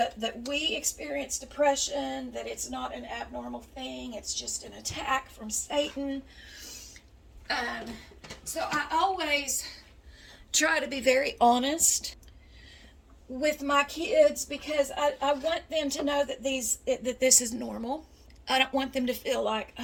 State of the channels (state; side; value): identical; both; correlation 1.00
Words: that we experience depression, that it's not an abnormal thing, it's just an attack from Satan. So I always try to be very honest with my kids, because I want them to know that this is normal. I don't want them to feel like,